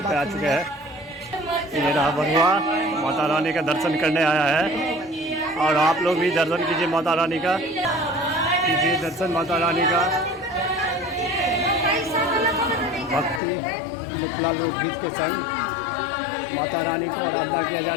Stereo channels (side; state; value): right; drops out; at 13.4 s